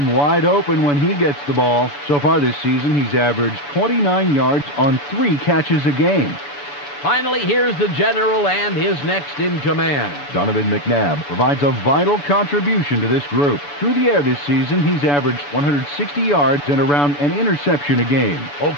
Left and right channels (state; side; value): late; right; 6.9 ms